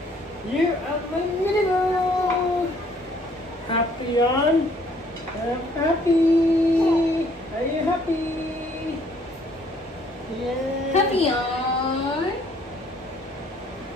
You are my mini boo! Happy on? I'm happy! Are you happy? Yeah! Happy on?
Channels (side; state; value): both; normal; correlation 0.62